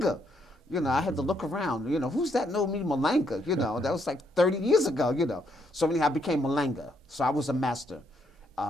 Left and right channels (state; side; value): normal; both; correlation 0.74